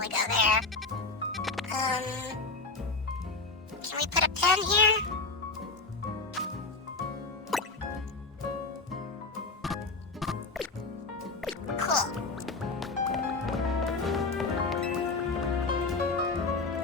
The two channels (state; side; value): quieter; right; 3.7 dB